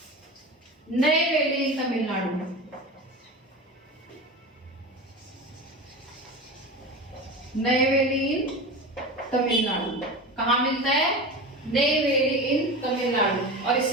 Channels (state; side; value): normal; both; correlation 0.28